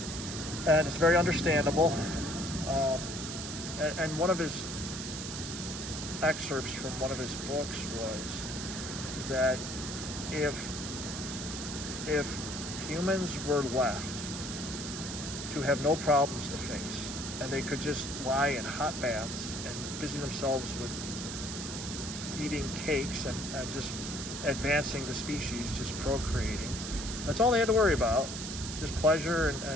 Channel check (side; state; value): right; noise; hiss, 7 dB below the sound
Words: and it's very understandable. And one of his excerpts from one of his books was that if humans were left to have no problems to face, and they could just lie in hot baths and busy themselves with eating cakes and just advancing the species, just procreating, that's all they had to worry about, just pleasure